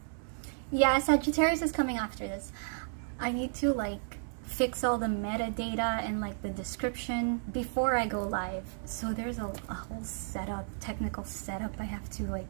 yeah, Sagittarius is coming after this. I need to like fix all the metadata and like the description before I go live. So there's a whole setup, technical setup I have to like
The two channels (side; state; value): left; silent; digital silence